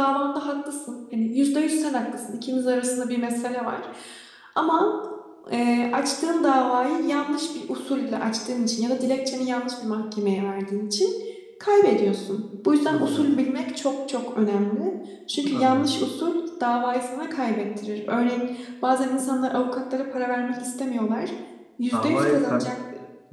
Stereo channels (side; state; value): both; identical; correlation 1.00